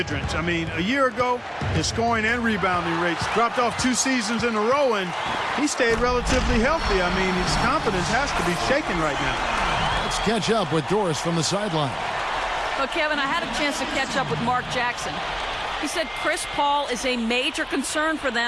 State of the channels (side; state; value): both; identical; correlation 1.00